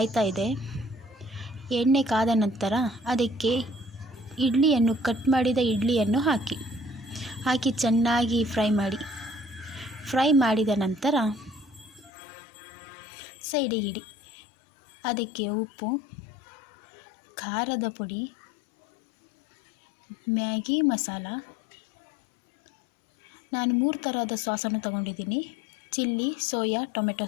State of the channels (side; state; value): right; drops out; at 12.1 s